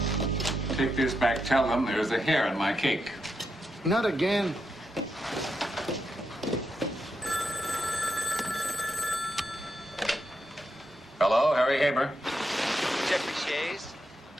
take this back. Tell them there's a hair in my cake. Not again. Hello, Harry Haber. Jeffrey Shays?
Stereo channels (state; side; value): normal; both; correlation 0.84